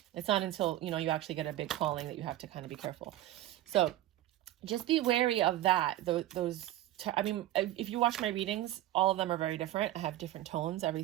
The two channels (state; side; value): quieter; left; 14.6 dB